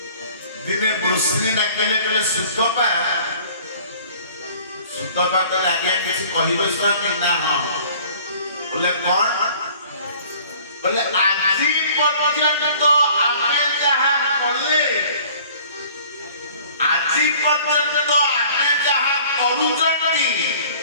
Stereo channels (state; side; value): inverted; both; correlation -0.51